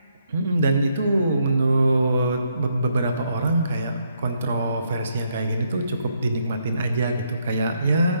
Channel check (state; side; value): inverted; both; correlation -0.76